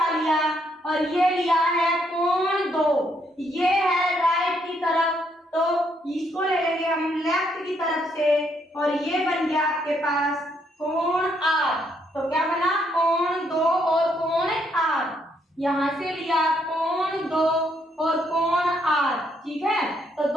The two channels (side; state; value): both; normal; correlation 0.73